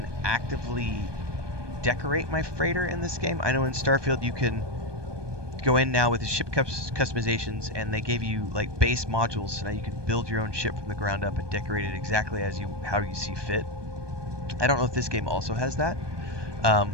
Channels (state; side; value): late; left; 1.2 ms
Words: actively decorate my freighter in this game. I know in Starfield you can go in now with the ship customizations, and they gave you like base modules, so now you can build your own ship from the ground up and decorate it exactly how you see fit. I don't know if this game also has that.